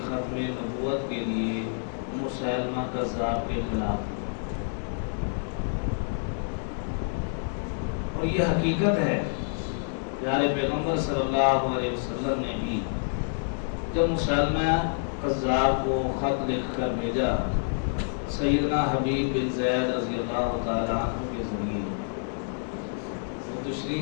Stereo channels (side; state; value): right; silent; digital silence